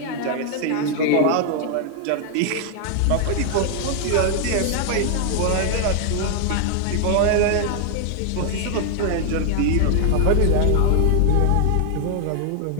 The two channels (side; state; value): both; different; correlation 0.00